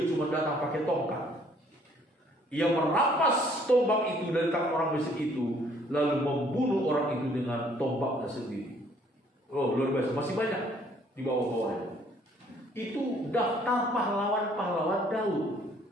cuma datang pakai tongkat. Ia merampas tombak itu dari tangan orang Mesir itu, lalu membunuh orang itu dengan tombaknya sendiri. Oh, luar biasa. Masih banyak di bawah-bawahnya. Itu daftar pahlawan-pahlawan Daud.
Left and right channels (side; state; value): both; normal; correlation 0.61